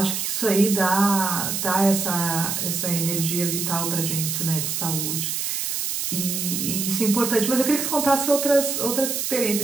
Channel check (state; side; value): noise; right; hiss, 2 dB below the sound